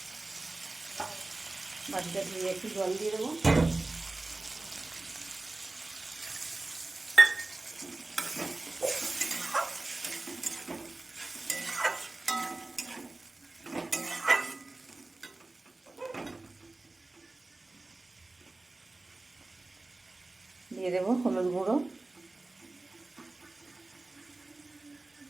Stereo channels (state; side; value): quieter; left; 3.1 dB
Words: বাটিটা ধুয়ে একটু জল দিয়ে দেবো। দিয়ে দেবো হলুদ গুঁড়ো,